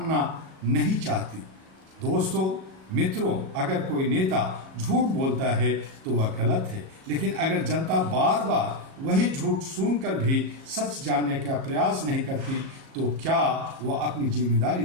नहीं चाहती। दोस्तों, मित्रों, अगर कोई नेता झूठ बोलता है तो वह गलत है, लेकिन अगर जनता बार बार वही झूठ सुनकर भी सच जानने का प्रयास नहीं करती तो क्या वह अपनी जिम्मेदारी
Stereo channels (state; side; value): late; left; 37 ms